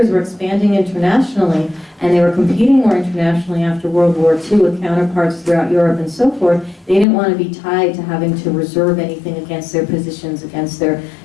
were expanding internationally, and they were competing more internationally after World War II with counterparts throughout Europe and so forth. They didn't want to be tied to having to reserve anything against their positions, against their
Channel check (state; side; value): drops out; right; at 7.1 s